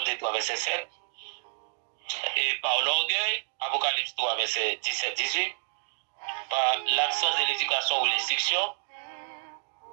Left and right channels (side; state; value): left; silent; digital silence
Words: 3, verset 7. Et par l'orgueil, Apocalypse 3, verset 17-18. par l'absence de l'éducation ou l'instruction.